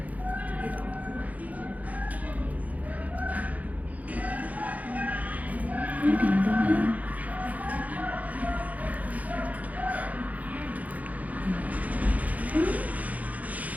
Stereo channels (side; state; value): left; late; 0.075 ms